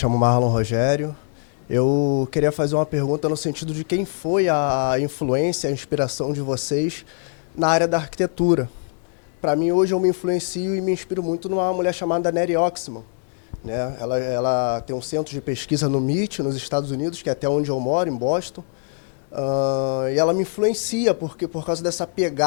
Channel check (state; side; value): silent; right; digital silence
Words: Marlon Rogério. Eu queria fazer uma pergunta no sentido de quem foi a influência, a inspiração de vocês na área da arquitetura. Para mim, hoje, eu me influencio e me inspiro muito numa mulher chamada Neri Oxman, né? Ela tem um centro de pesquisa no MIT, nos Estados Unidos, que é até onde eu moro, em Boston. E ela me influencia por causa dessa